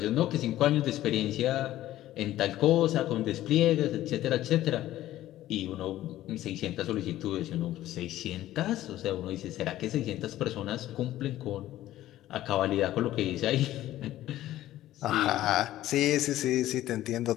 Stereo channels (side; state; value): right; quieter; 14.2 dB